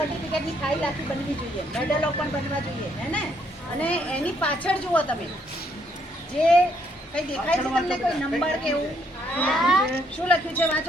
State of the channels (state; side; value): normal; both; correlation 0.70